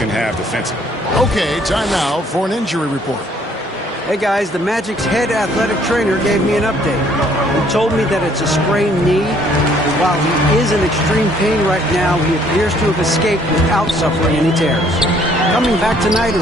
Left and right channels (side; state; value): both; normal; correlation 0.62